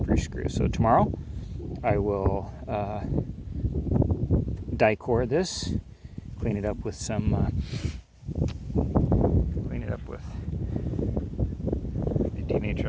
screws. So tomorrow I will Dicor this, clean it up with some the denatured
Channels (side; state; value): both; identical; correlation 1.00